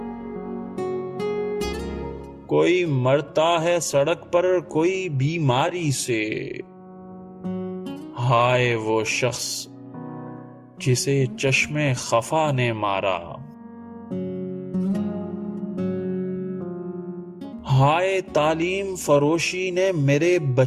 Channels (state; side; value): identical; both; correlation 1.00